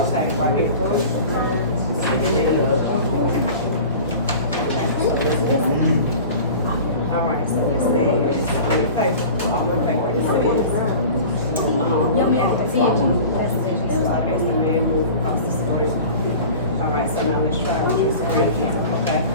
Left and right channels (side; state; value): both; inverted; correlation -0.39